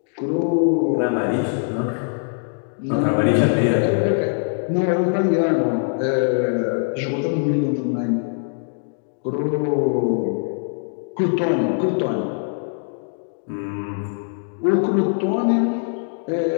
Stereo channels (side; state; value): right; silent; 60 dB below the other